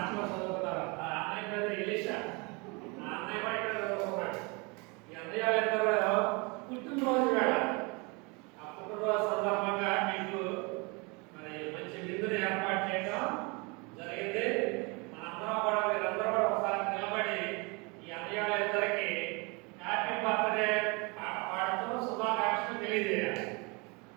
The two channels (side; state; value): left; quieter; 29.2 dB